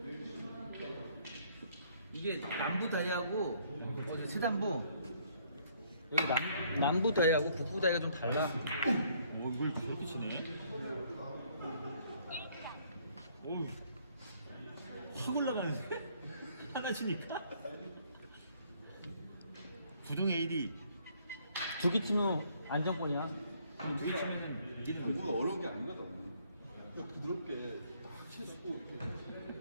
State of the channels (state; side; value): inverted; both; correlation -0.64